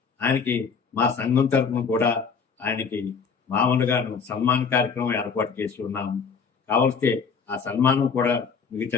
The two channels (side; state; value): right; quieter; 5.8 dB